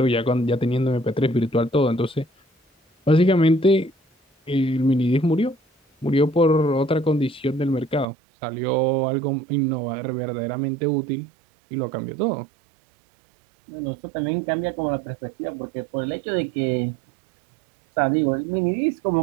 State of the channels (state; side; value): drops out; left; at 8.1 s